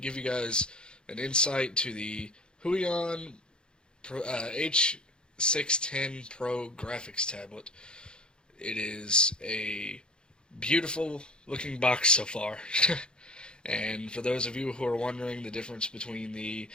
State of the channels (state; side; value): late; right; 0.050 ms